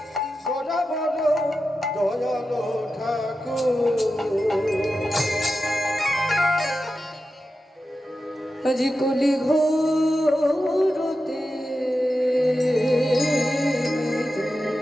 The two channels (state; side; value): normal; both; correlation 0.91